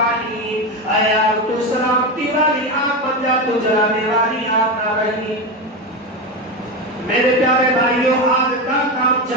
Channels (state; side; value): normal; both; correlation 0.16